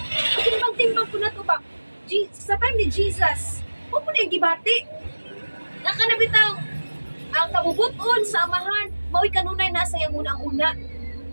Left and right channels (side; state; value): both; inverted; correlation -1.00